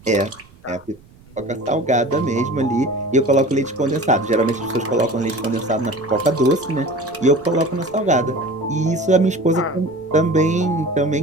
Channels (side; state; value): right; noise; rumble, 26 dB below the sound